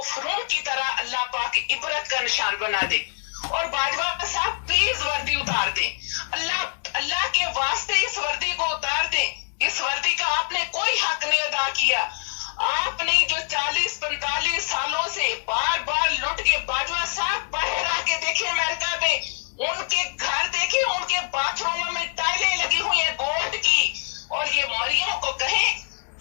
फरून की तरह अल्लाह पाक इबरत का निशान बना दे। और बाजवा साहब प्लीज वर्दी उतार दें, अल्लाह के वास्ते इस वर्दी को उतार दें। इस वर्दी का आपने कोई हक नहीं अदा किया। आपने जो 40-45 सालों से बार बार लुट के, बाजवा साहब बाहर आके देखे अमेरिका में, उनके घर देखे, उनके बाथरूम में टाइलें लगी हुई है गोल्ड की। और ये मरियम को कहे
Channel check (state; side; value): silent; right; 62 dB below the other